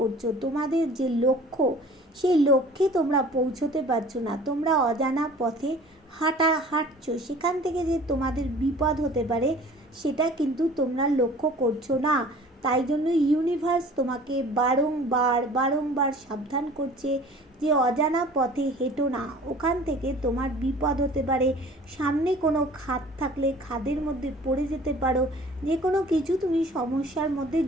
তোমাদের যে লক্ষ্য সেই লক্ষ্যে তোমরা পৌঁছতে পারছো না, তোমরা অজানা পথে হাঁটছো, সেখান থেকে যে তোমাদের বিপদ হতে পারে সেটা কিন্তু তোমরা লক্ষ্য করছো না। তাই জন্য ইউনিভার্স তোমাকে বারংবার সাবধান করছে যে অজানা পথে হেঁটো না, ওখান থেকে তোমার বিপদ হতে পারে। সামনে কোনো খাদ থাকলে খাদের মধ্যে পড়ে যেতে পারো, যে কোনো কিছু তুমি সমস্যার মধ্যে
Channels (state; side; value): normal; both; correlation 0.47